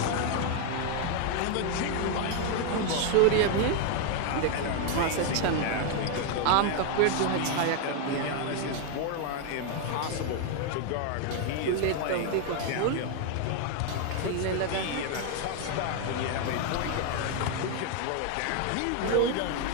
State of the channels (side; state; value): both; different; correlation 0.01